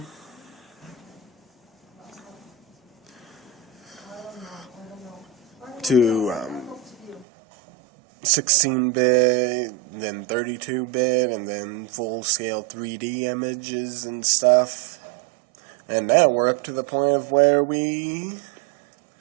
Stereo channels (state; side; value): drops out; left; at 7.2 s